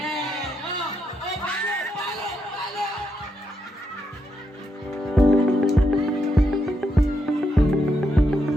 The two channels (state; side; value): normal; both; correlation 0.81